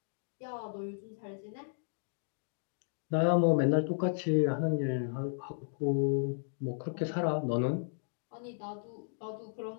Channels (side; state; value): right; silent; digital silence